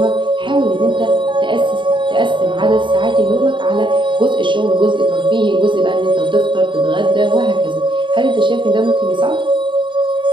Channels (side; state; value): left; late; 0.23 ms